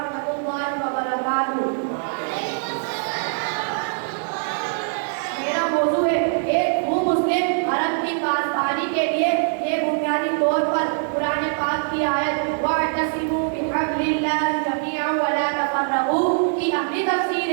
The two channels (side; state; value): left; silent; digital silence